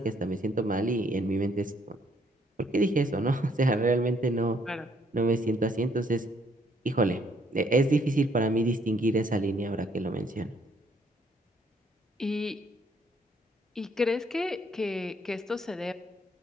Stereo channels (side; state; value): both; normal; correlation 0.67